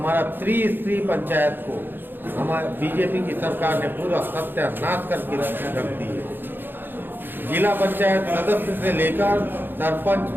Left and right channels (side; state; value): left; late; 0.097 ms